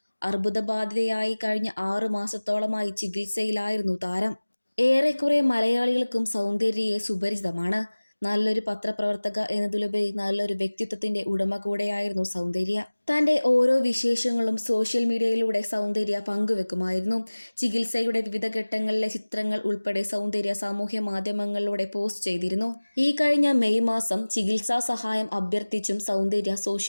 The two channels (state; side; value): inverted; both; correlation -1.00